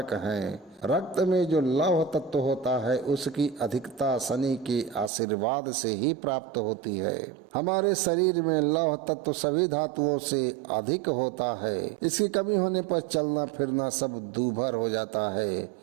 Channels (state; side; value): drops out; left; at 5.1 s